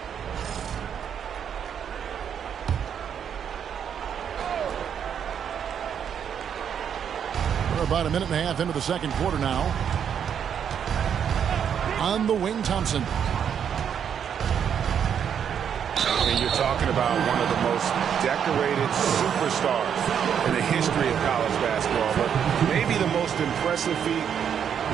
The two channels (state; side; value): quieter; left; 8.2 dB